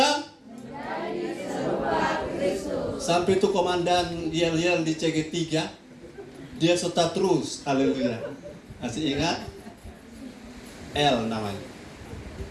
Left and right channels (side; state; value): both; identical; correlation 1.00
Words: Menjadi serupa Kristus. Sampai itu komandan yel-yel di CG3, dia serta terus. Haleluya. Masih ingat? L namanya.